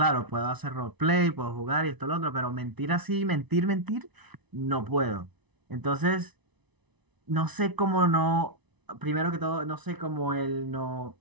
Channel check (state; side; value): late; left; 1.0 ms